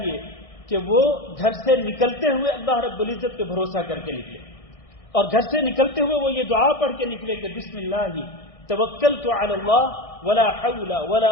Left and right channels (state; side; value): late; right; 1.6 ms